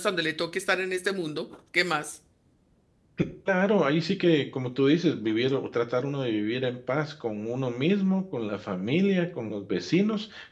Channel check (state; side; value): identical; both; correlation 1.00